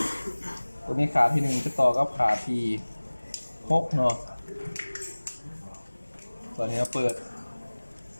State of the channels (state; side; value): inverted; both; correlation -1.00